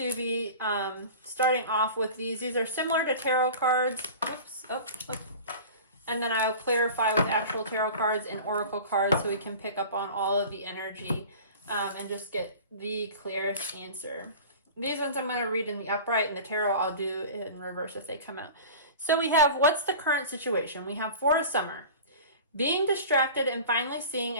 be starting off with these. These are similar to tarot cards. Whoops, and then I'll clarify with actual tarot cards and oracle cards so we can pick up on all of the energy and just get the clearest answer. These ones I'm going to read in the upright, and the tarot I'll do in reverse if they come out. So we have, what's the current situation? We have for a summer, being distracted and finally seeing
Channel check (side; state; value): both; inverted; correlation -0.37